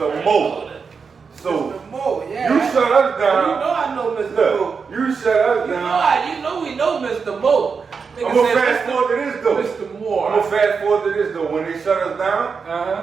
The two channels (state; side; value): quieter; left; 5.5 dB